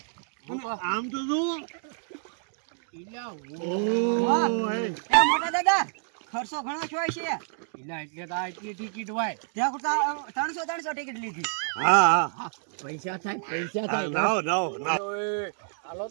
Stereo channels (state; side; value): silent; left; digital silence